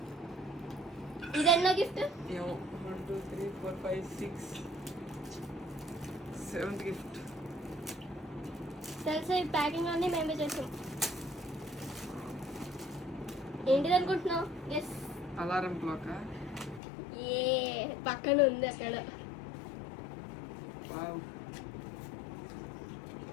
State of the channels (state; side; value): drops out; right; at 16.8 s